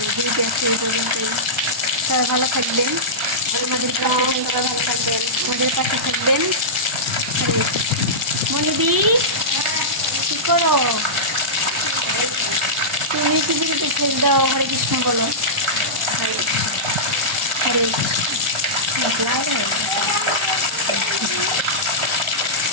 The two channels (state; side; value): late; left; 1.0 ms